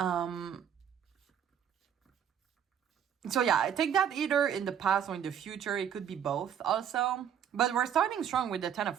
yeah, I take that either in the past or in the future. It could be both also. But we're starting strong with the 10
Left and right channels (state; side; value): quieter; left; 8.9 dB